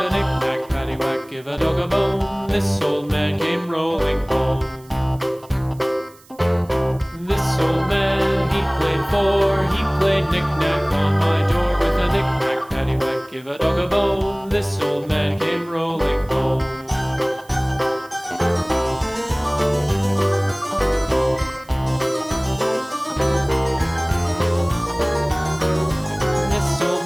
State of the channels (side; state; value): right; noise; hiss, 26 dB below the sound